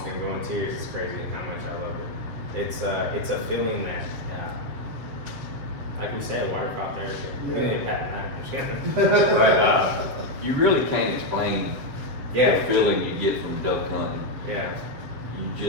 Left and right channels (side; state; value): left; late; 7.5 ms